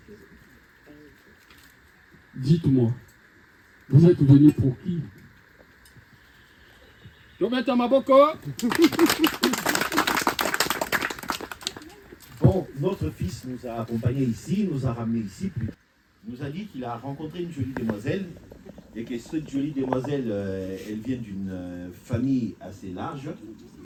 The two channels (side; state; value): both; identical; correlation 1.00